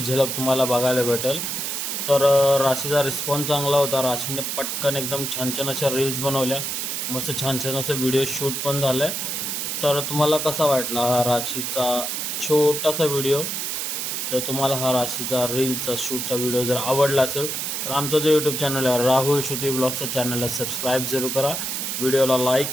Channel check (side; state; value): right; noise; hiss, 2 dB below the sound